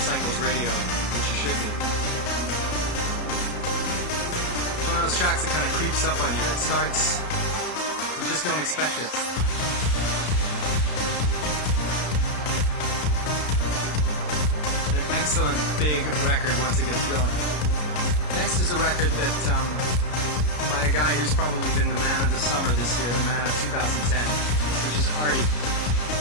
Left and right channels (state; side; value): late; right; 33 ms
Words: Radio, which you should be. It's one of those tracks that kind of creeps up on you. It starts, you just don't expect it. An excellent big record once it gets going. Next is a record that by a guy who's probably been the man of the summer this year, the man of 2010, which is Arty.